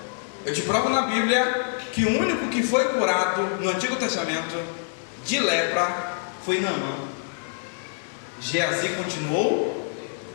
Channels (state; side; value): silent; right; digital silence